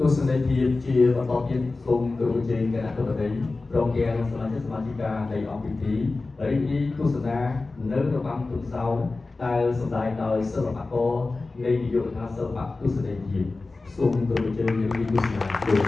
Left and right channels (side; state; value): right; quieter; 3.5 dB